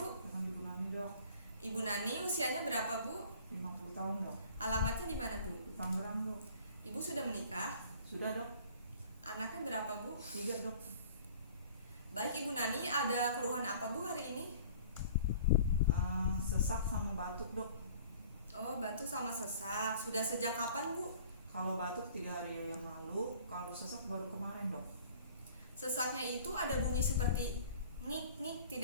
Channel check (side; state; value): both; inverted; correlation -0.48